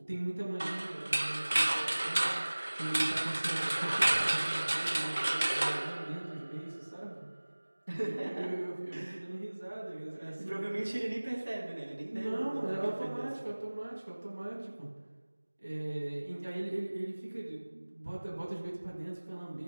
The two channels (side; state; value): both; inverted; correlation -1.00